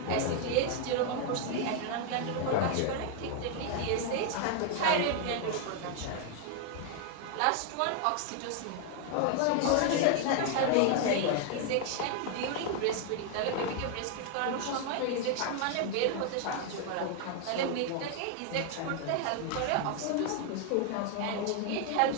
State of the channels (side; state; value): both; different; correlation 0.00